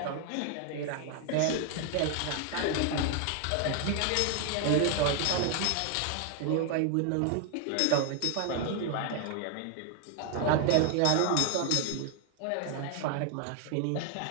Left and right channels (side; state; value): both; different; correlation 0.00